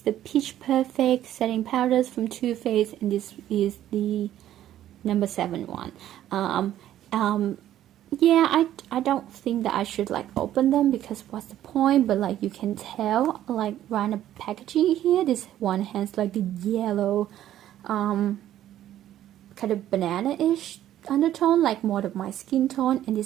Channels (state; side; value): quieter; left; 12.2 dB